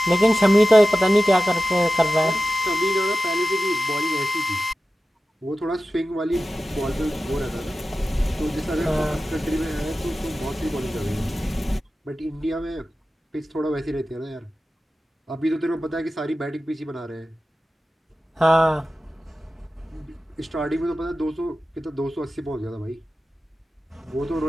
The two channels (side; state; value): both; normal; correlation 0.94